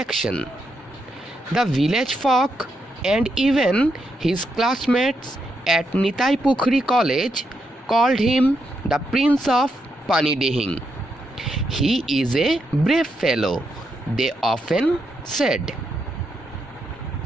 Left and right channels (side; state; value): both; normal; correlation 0.82